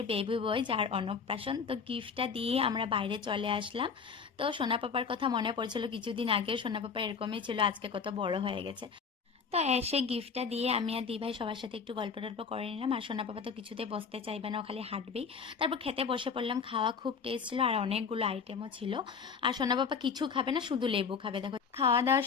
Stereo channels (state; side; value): quieter; right; 5.9 dB